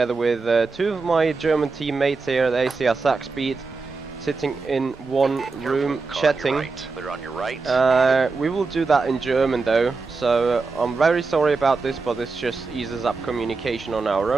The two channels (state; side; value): quieter; left; 4.2 dB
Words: with two of my German teammates here at ACR Suckspeed, sitting in one room chatting. They're on your right. We will do that in German though, so I'm very sorry about this, but this just eases up communication on our